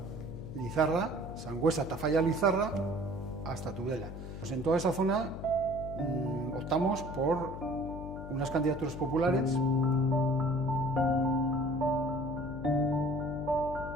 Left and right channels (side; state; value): left; noise; hum, 10 dB below the sound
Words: Sangüesa-Tafalla-Lizarra, hasta Tudela. Pues en toda esa zona optamos por unas candidaturas populares.